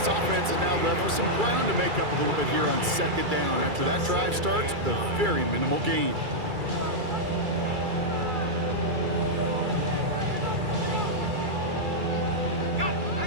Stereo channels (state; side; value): late; left; 2.3 ms